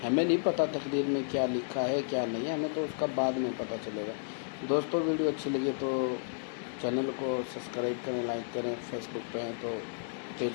ہمیں نہیں پتہ تقدیر میں کیا لکھا ہے کیا نہیں ہے, ہمیں تو اس کا بعد میں پتہ چلے گا. دوستوں ویڈیو اچھی لگی تو چینل کو سبسکرائب کریں, لائک کریں. فیس بک پہ ہیں تو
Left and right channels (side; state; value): right; silent; digital silence